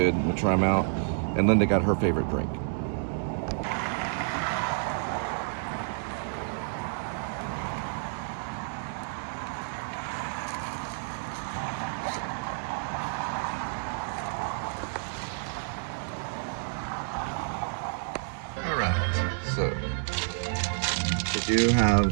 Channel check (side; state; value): left; silent; digital silence